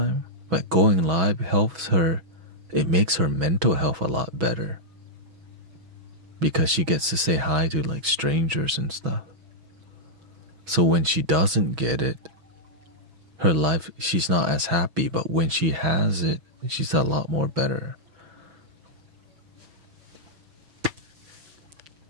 but going live helps her. It makes her mental health a lot better because she gets to say hi to strangers and stuff. So when she doesn't get it, her life, she's not as happy, but when she has it, she's a lot more better.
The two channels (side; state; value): left; late; 6.2 ms